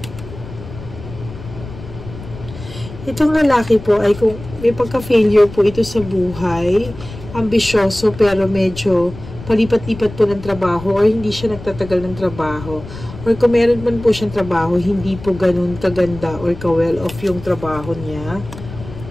Itong lalaki po ay kung may pagka-failure po ito sa buhay, ambisyoso pero medyo palipat-lipat po ng trabaho or hindi siya nagtatagal ng trabaho. Or kung meron man po siyang trabaho, hindi po ganun kaganda or ka-well off yung trabaho niya.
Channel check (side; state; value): left; noise; rumble, 14 dB below the sound